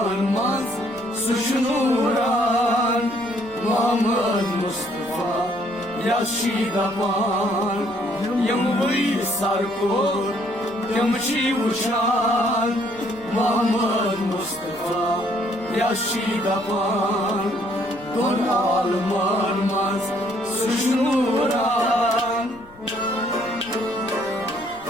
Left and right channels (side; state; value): left; noise; rumble, 25 dB below the sound